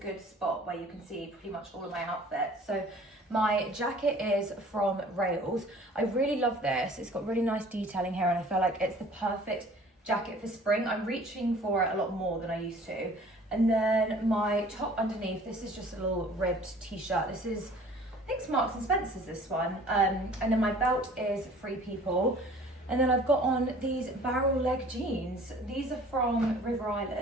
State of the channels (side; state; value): both; normal; correlation 0.50